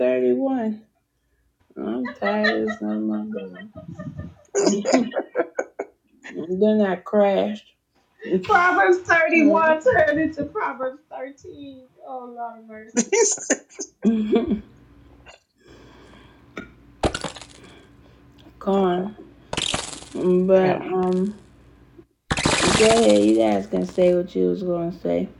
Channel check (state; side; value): identical; both; correlation 1.00